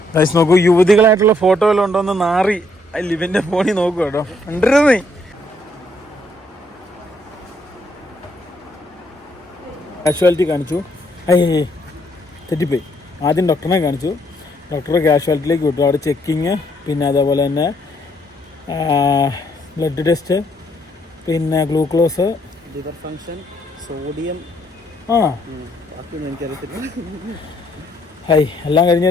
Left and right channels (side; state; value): both; normal; correlation 0.70